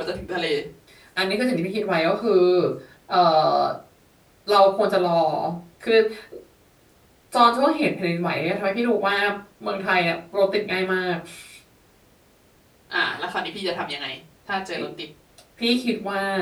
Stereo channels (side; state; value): both; identical; correlation 1.00